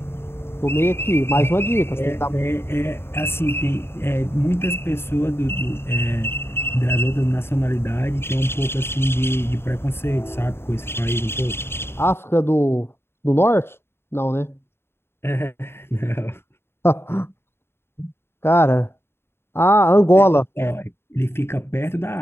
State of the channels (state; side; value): late; right; 0.11 ms